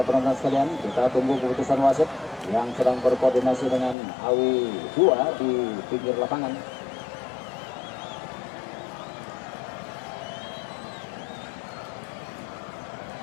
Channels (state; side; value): drops out; right; at 4.0 s